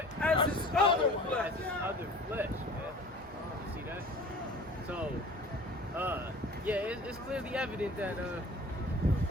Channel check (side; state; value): both; normal; correlation 0.44